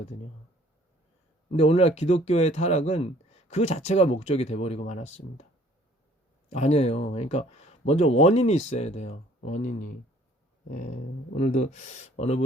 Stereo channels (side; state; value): both; normal; correlation 0.57